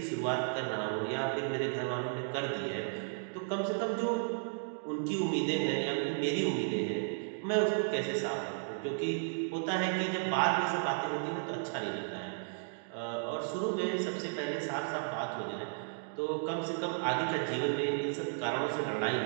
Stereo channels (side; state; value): left; silent; digital silence